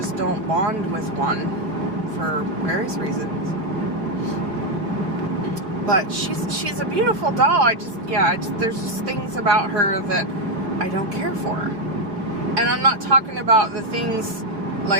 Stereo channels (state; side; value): late; left; 5.2 ms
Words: don't bond with one for various reasons. But she's a beautiful doll. There's just things about her that I don't care for. And I'm not talking about the things